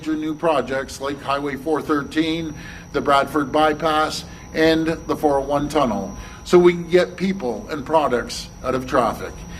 new projects like Highway 413, the Bradford Bypass, and the 401 tunnel, so we can get people and products out of traffic.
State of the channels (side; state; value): both; identical; correlation 1.00